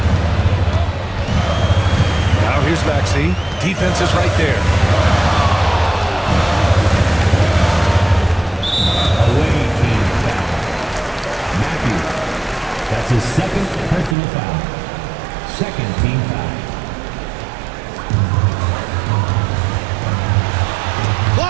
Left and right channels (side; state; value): left; drops out; at 14.2 s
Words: Now here's Maxey. Defense is right there. Away team foul. Matthews. That's his second personal foul. Second team foul.